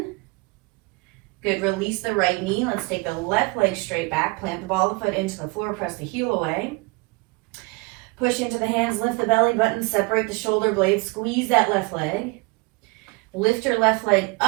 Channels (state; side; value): quieter; left; 26.9 dB